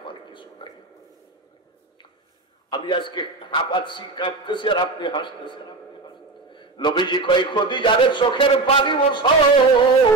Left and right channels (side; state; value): left; quieter; 3.5 dB